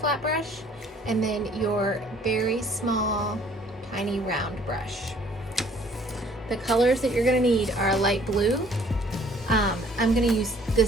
brush. And then your very small, tiny round brush. The colors that you're gonna need are light blue. I'm gonna use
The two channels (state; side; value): normal; both; correlation 0.58